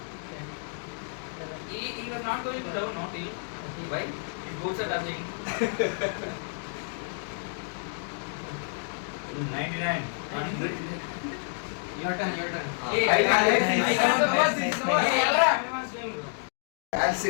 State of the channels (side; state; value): right; silent; 59 dB below the other